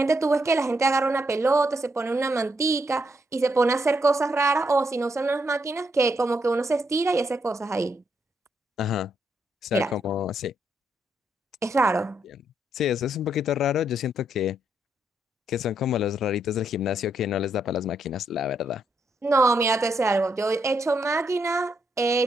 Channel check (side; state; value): both; normal; correlation 0.77